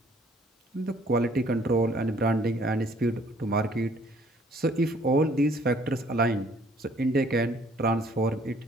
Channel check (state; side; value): normal; both; correlation 0.60